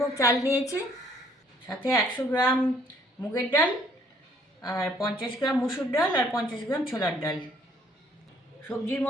চাল নিয়েছি, সাথে 100 গ্রাম মুগের ডাল, আর 50 গ্রাম মুসুর ডাল, আর 50 গ্রাম ছোলার ডাল। সবজির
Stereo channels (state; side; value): normal; both; correlation 0.62